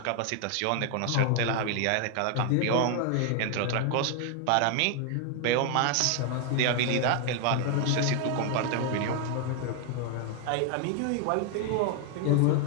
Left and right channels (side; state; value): both; different; correlation 0.01